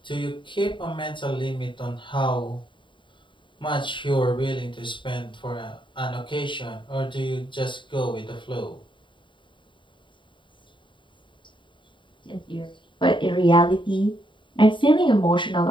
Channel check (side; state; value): right; late; 0.23 ms